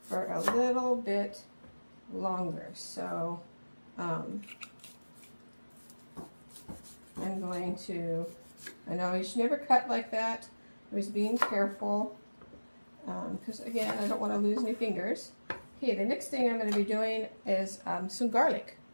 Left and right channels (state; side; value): inverted; both; correlation -1.00